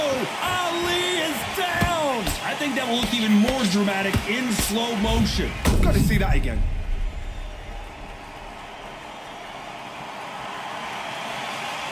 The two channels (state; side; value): identical; both; correlation 1.00